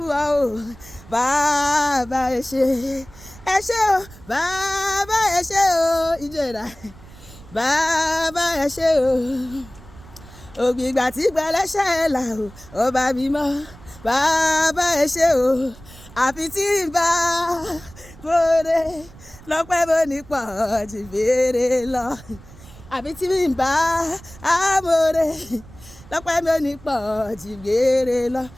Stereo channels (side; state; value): right; noise; rumble, 20 dB below the sound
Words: ọ o bàbá ẹ ṣé o bàbá ẹ ṣé o ìjọra bàbá ẹ ṣé o ògbìgbà tí gbẹlẹ́ṣẹ̀ là o ọba mímọ́ bàbá ẹ ṣé o àfi tí ń bá bóde lọ́pẹ́ bó ní pọ̀ jù béèrè lọ àfi tí ń bá amóore lọ́pẹ́ bó ní pọ̀ jù béèrè lọ